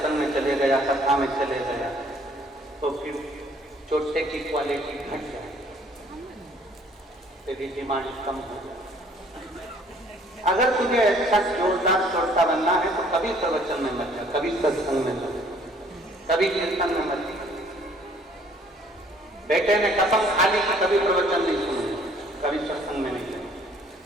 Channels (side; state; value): both; normal; correlation 0.59